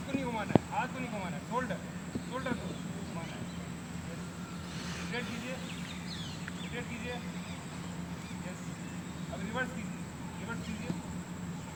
को नहीं घुमाना है, हाथ को नहीं घुमाना है, शोल्डर शोल्डर को घुमाना है। रोटेट कीजिए, रोटेट कीजिए। यस, अब रिवर्स कीजिए, रिवर्स कीजिए,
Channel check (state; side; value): identical; both; correlation 1.00